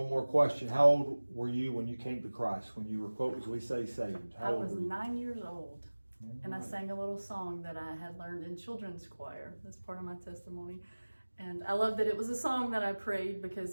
more question. How old were you when you came to Christ? When you were, quote, as we say, saved? How I old was were you? 9 years old, and I Right. sang a little song that I had learned in children's choir. That's part of my testimony. And I love that it was a song that I prayed,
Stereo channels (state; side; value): inverted; both; correlation -1.00